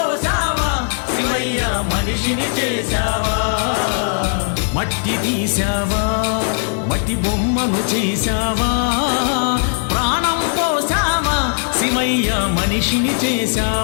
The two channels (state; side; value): silent; right; 65 dB below the other